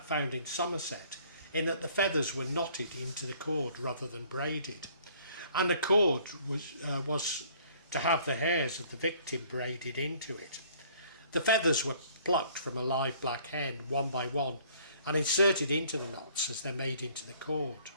found in Somerset in that the feathers were knotted into the cord rather than braided, and the cord was to have the hairs of the victim braided into it. The feathers were plucked from a live black hen one by one and inserted into the knots as they're made into the cord.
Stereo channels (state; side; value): inverted; both; correlation -0.57